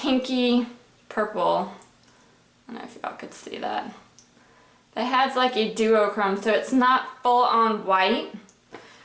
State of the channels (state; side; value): identical; both; correlation 1.00